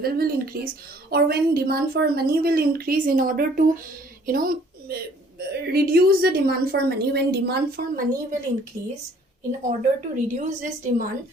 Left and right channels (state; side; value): normal; both; correlation 0.58